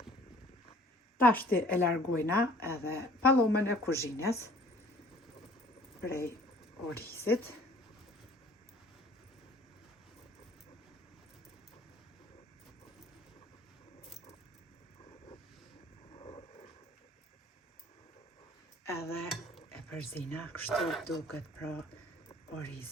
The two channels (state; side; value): normal; both; correlation 0.53